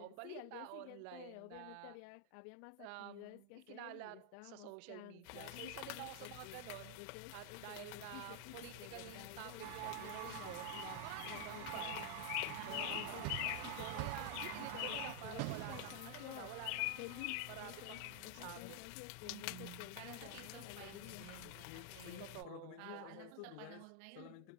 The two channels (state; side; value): different; both; correlation 0.00